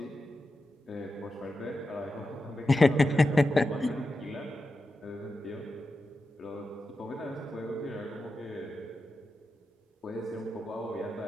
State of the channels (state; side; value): normal; both; correlation 0.90